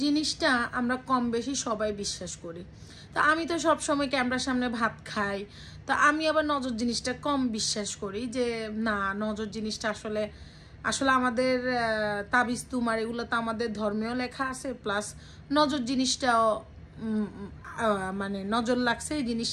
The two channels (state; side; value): identical; both; correlation 1.00